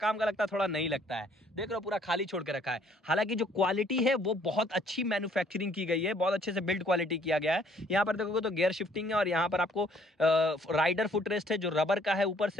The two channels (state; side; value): normal; both; correlation 0.62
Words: का लगता है, थोड़ा नहीं लगता है। देख लो पूरा खाली छोड़ के रखा है। हालांकि जो क्वालिटी है वो बहुत अच्छी मैन्युफैक्चरिंग की गई है, बहुत अच्छे से बिल्ड क्वालिटी किया गया है। यहाँ पर देखोगे तो गियर शिफ्टिंग है, और यहाँ पर आपको राइडर फुटरेस्ट है जो रबर का है ऊपर